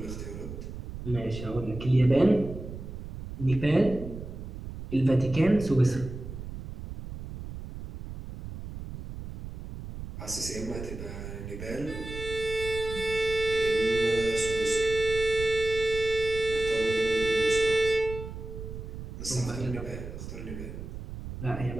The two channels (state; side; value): noise; right; rumble, 10 dB below the sound